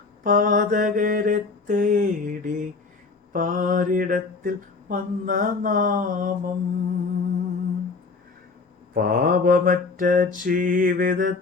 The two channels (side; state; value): right; quieter; 4.2 dB